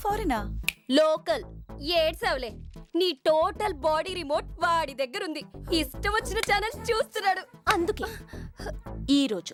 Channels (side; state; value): both; identical; correlation 1.00